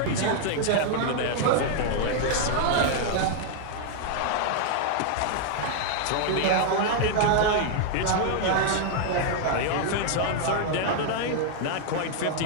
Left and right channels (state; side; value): different; both; correlation 0.00